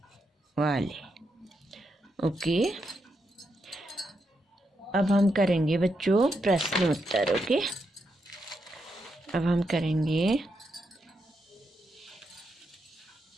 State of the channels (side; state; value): both; normal; correlation 0.83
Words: वाले। ओके, अब हम करेंगे बच्चों प्रश्न उत्तर। ओके, अब हम करेंगे